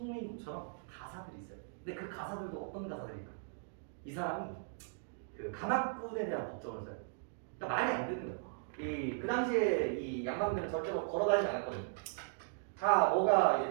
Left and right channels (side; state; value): left; silent; digital silence